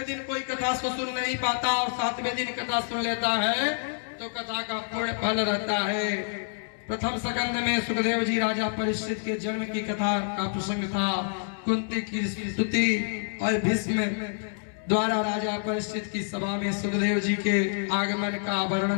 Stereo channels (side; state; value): right; silent; digital silence